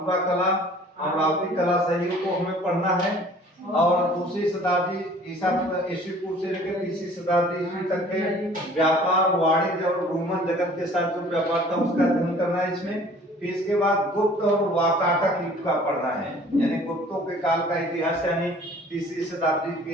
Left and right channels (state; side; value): normal; both; correlation 0.51